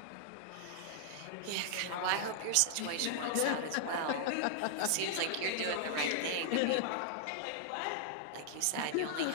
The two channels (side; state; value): both; different; correlation -0.01